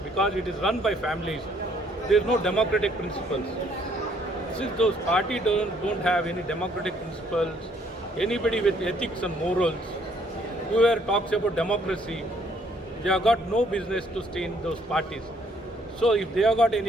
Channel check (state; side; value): normal; both; correlation 0.65